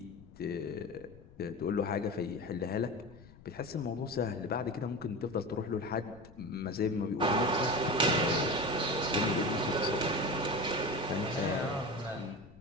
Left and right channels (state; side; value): noise; left; rumble, 21 dB below the sound